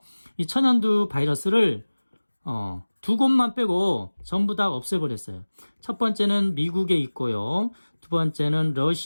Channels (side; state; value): both; inverted; correlation -1.00